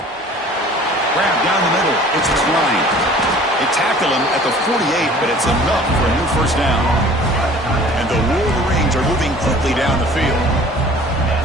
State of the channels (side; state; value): both; normal; correlation 0.48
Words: Grab down the middle. It's Klein. They tackle him at the 48, but it's enough for a new 1st down. And the Wolverines Dolphins are moving quickly down the field.